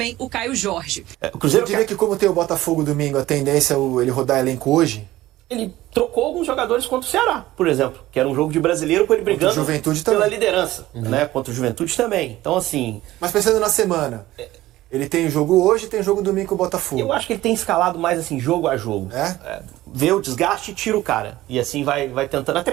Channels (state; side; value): quieter; left; 16.1 dB